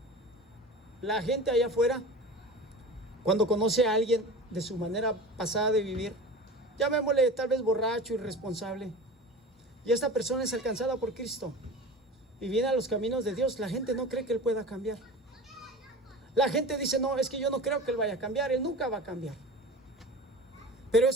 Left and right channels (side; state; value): both; normal; correlation 0.34